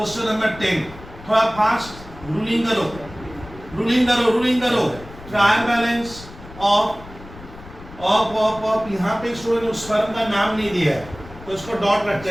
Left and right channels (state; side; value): noise; left; rumble, 17 dB below the sound